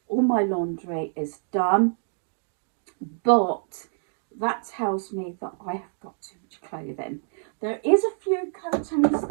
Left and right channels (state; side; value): silent; left; digital silence